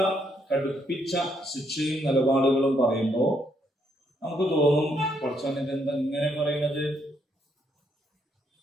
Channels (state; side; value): normal; both; correlation 0.74